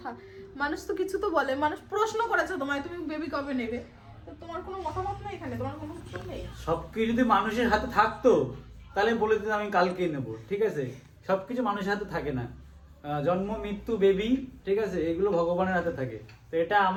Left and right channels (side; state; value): both; identical; correlation 1.00